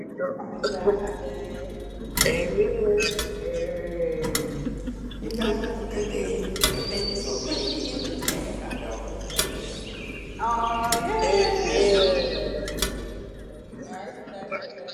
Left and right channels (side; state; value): both; identical; correlation 1.00